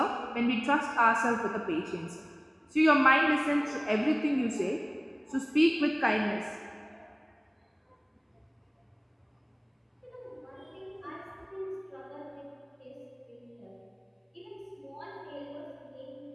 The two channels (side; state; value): both; identical; correlation 1.00